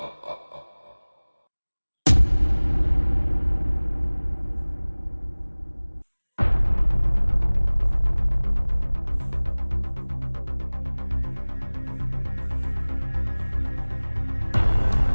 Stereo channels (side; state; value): both; inverted; correlation -1.00